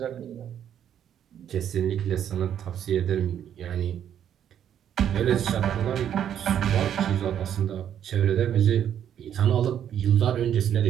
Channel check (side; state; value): left; quieter; 9.7 dB